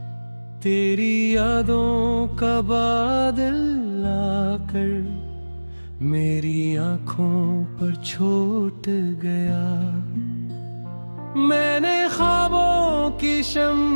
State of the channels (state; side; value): inverted; both; correlation -1.00